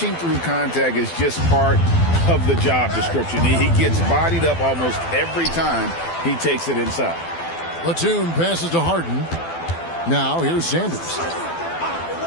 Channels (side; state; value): right; late; 12 ms